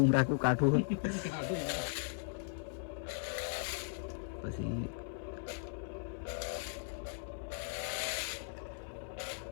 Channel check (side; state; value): right; silent; 53 dB below the other